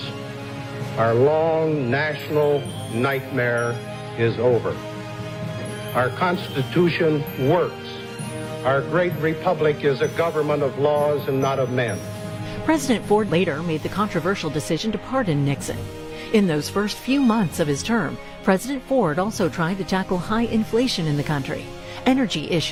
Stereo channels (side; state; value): both; identical; correlation 1.00